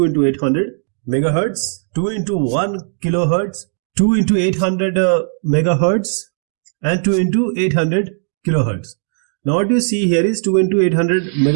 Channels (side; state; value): left; silent; digital silence